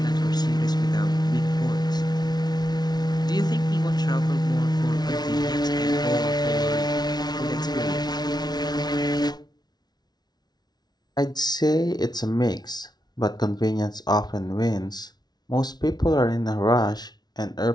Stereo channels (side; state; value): right; late; 0.19 ms